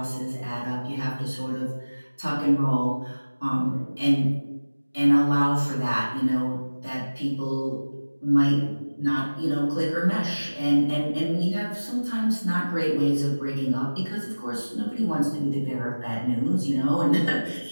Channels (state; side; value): inverted; both; correlation -1.00